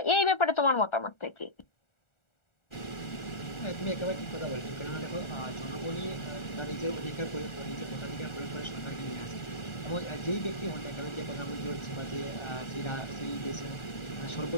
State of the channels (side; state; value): right; late; 1.4 ms